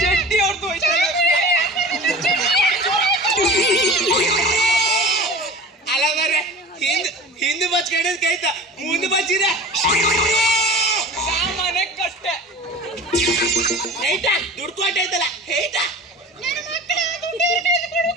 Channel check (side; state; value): both; normal; correlation 0.36